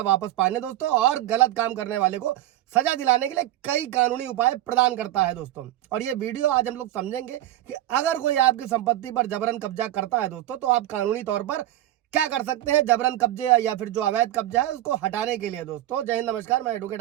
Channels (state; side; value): quieter; left; 14.0 dB